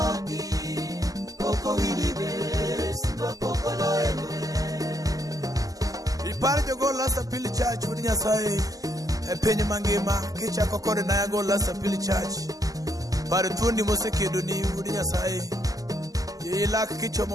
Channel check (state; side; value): late; left; 0.17 ms